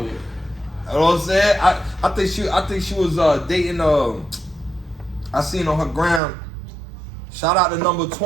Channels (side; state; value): left; drops out; at 6.2 s